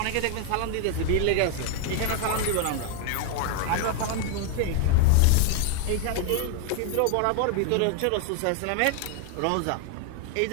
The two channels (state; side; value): different; both; correlation 0.00